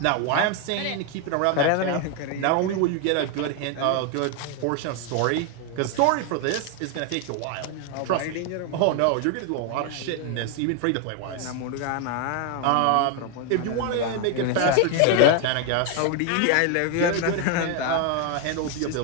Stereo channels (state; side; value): different; both; correlation 0.01